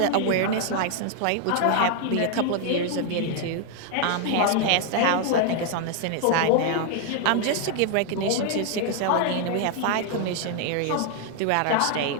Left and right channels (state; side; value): different; both; correlation 0.00